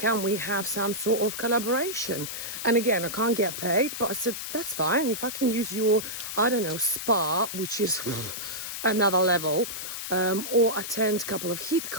we have some sort of collaboration? And again, I can't get paid, but I said, that's fine. If I can use your, spa, which is another level, or attend a couple of HIIT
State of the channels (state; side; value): noise; left; hiss, 6 dB below the sound